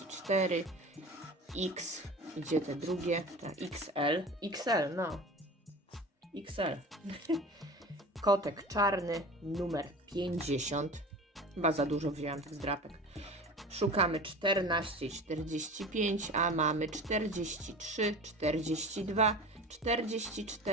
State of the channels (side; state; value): both; normal; correlation 0.36